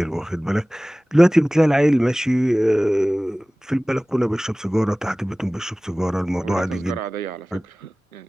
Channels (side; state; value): both; normal; correlation 0.98